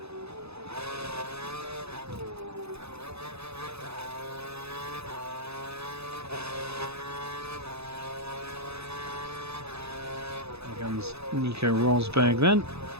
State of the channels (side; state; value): left; late; 0.79 ms